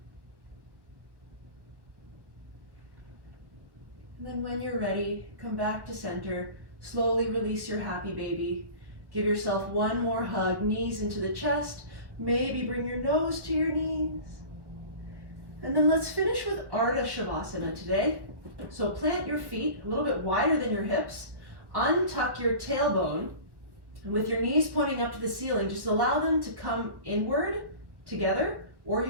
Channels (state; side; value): late; left; 1.3 ms